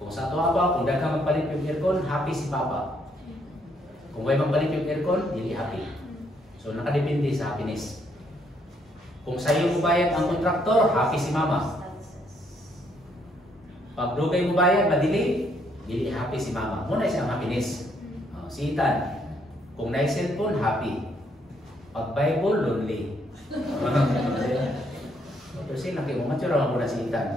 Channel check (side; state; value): both; normal; correlation 0.71